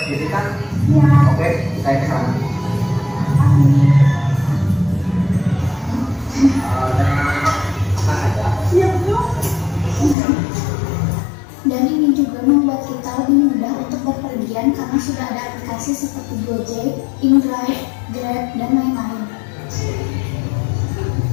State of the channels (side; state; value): right; drops out; at 10.2 s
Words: jadi kan? Ya. Oke, saya ke sana. Tenang aja. Siap dong. Dan ini juga membuat kita lebih mudah untuk berpergian karena sudah ada aplikasi seperti Gojek, InDrive, Grab, dan lain-lain.